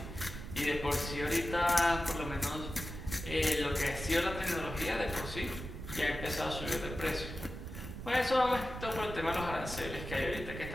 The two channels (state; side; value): noise; right; rumble, 9 dB below the sound